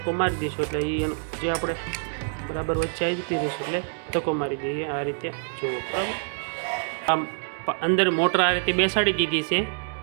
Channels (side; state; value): left; silent; digital silence